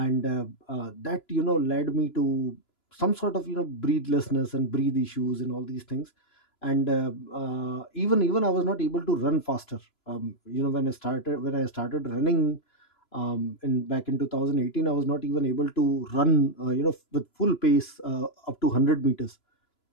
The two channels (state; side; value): late; right; 2.9 ms